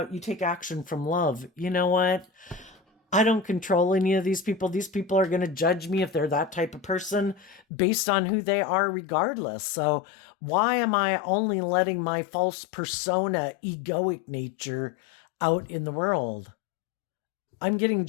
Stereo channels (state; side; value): drops out; right; at 7.6 s